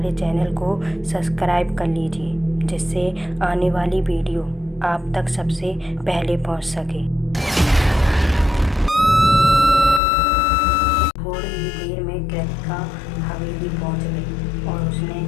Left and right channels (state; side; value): drops out; right; at 10.0 s